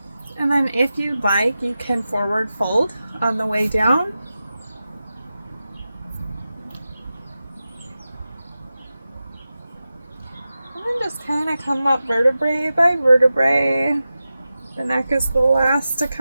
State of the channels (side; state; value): both; inverted; correlation -0.93